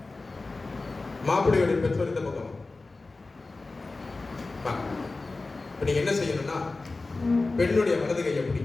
மாப்பிள்ளையுடைய பெற்றோர் இந்த பக்கம் வாங்க. நீங்க என்ன செய்யணும்னா பெண்ணுடைய வலது கையை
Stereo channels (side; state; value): right; quieter; 3.5 dB